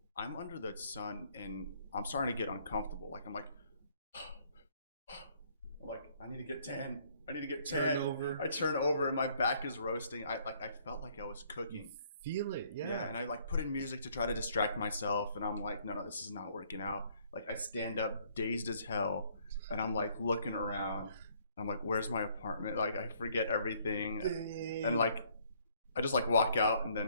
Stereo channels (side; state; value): both; inverted; correlation -0.64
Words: I'm under the sun and I'm starting to get uncomfortable. Like I'm like, I need to get tan. I need to get tan. I turn over and my back is roasting. I felt like I was cooking. Feel it, yeah. Yeah, and I like put in music to try to distract myself, and I'm like, no, this is not working out. Like I stand up dazed as hell, and I'm like looking around. I'm like, where's my apartment? Like I forget everything, and like I just like walk out, and